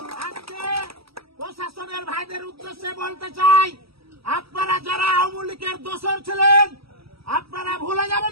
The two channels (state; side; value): late; left; 0.76 ms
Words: আজকে প্রশাসনের ভাইদের উদ্দেশ্যে বলতে চাই, আপনারা যারা আওয়ামী লীগের দোসর ছিলেন আপনারা ভুলে